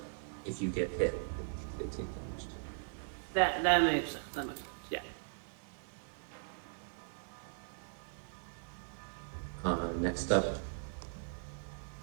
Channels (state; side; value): silent; left; digital silence